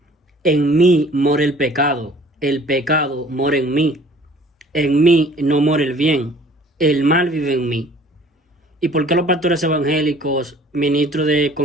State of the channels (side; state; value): both; normal; correlation 0.52